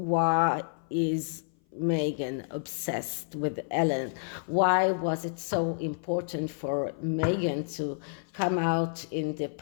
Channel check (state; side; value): silent; right; 56 dB below the other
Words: is Meghan obsessed with Ellen? Why was it so important for Meghan to come out in the